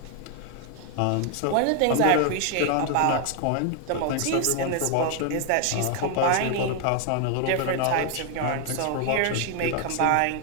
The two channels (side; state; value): both; different; correlation 0.01